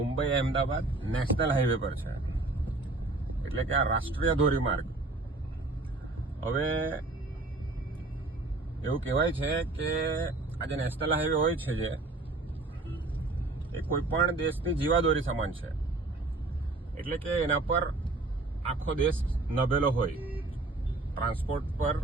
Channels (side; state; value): left; quieter; 3.2 dB